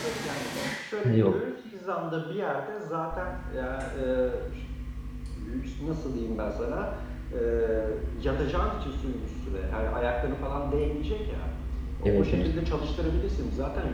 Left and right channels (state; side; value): identical; both; correlation 1.00